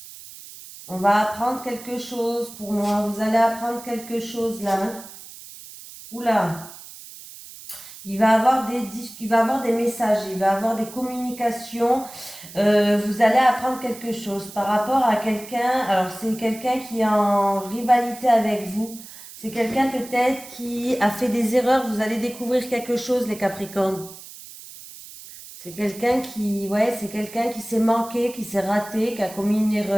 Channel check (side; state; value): right; noise; hiss, 16 dB below the sound